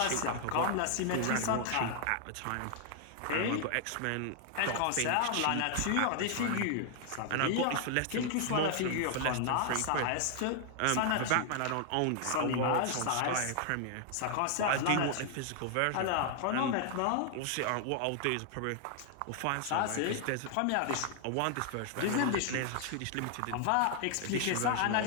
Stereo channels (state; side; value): different; both; correlation 0.00